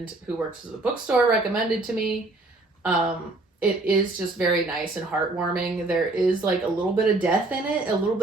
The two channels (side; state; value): left; quieter; 3.0 dB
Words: who works at the bookstore recommended to me. It is just very nice and heartwarming. There is like a little bit of death in it, a little